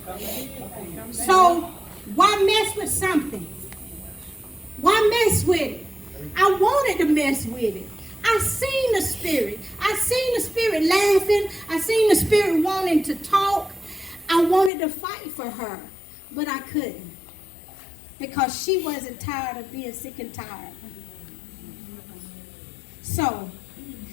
So why mess with something? Why mess with it? I wanted to mess with it. I seen the spirit. I seen the spirit laughing. I seen the spirit wanting to talk. I wanted to fight for her, but I couldn't, because she wasn't tired of being sick and tired. So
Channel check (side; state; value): right; drops out; at 14.7 s